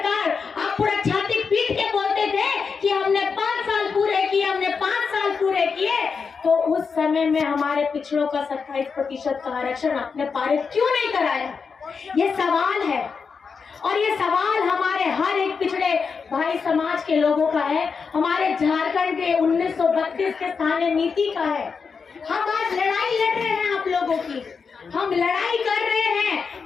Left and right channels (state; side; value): quieter; right; 5.5 dB